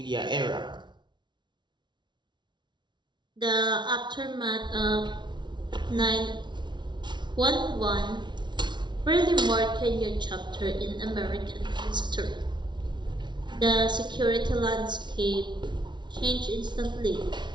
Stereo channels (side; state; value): left; late; 0.22 ms